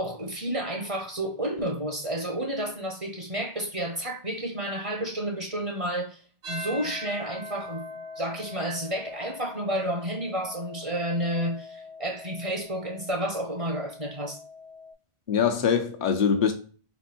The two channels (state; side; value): late; left; 1.6 ms